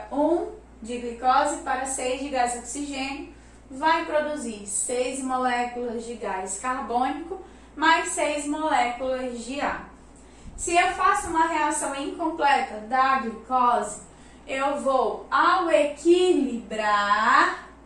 1 de glicose para 6 de gás oxigênio, vai produzir 6 moléculas de gás carbônico mais 6 moléculas de água. Se eu faço uma reação incompleta da glicose, eu vou, ao equilibrar,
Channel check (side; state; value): both; identical; correlation 1.00